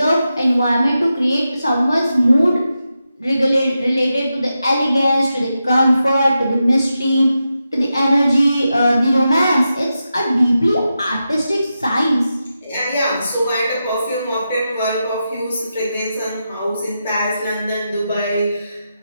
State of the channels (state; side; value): inverted; both; correlation -0.89